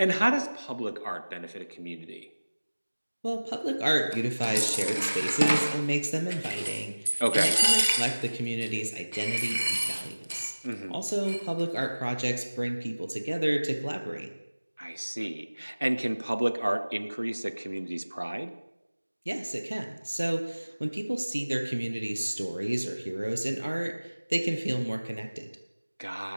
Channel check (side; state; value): both; inverted; correlation -1.00